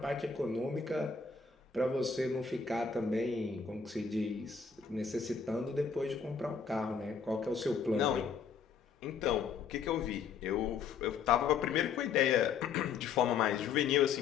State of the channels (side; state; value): right; quieter; 6.0 dB